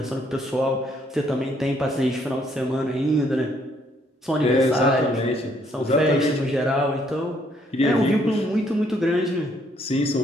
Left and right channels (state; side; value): normal; both; correlation 0.68